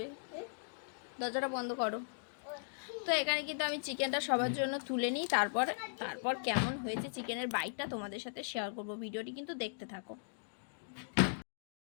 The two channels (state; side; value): silent; right; digital silence